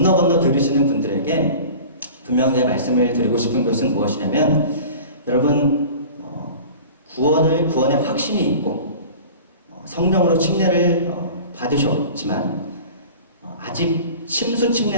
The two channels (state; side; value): inverted; both; correlation -0.40